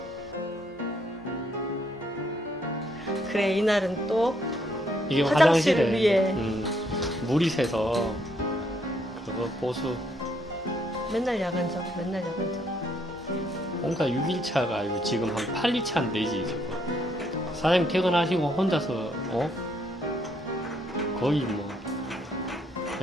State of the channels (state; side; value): normal; both; correlation 0.71